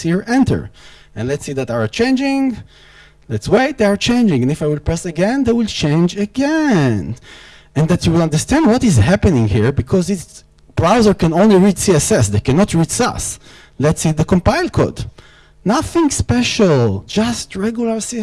here, enter. And let's see that they are changing. Let's wait, they are changing. And if I will press again, they will change again. And that you will understand what is happening here, because its browser can only read CSS. They cannot read Sass. Let's see the compile code. Nothing special, just regular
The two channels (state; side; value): identical; both; correlation 1.00